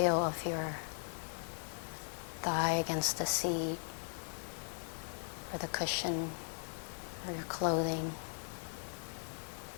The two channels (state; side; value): silent; right; digital silence